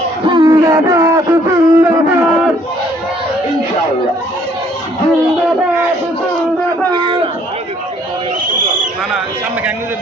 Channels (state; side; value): normal; both; correlation 0.63